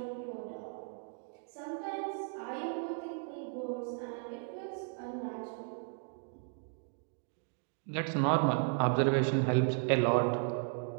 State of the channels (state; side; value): silent; left; 54 dB below the other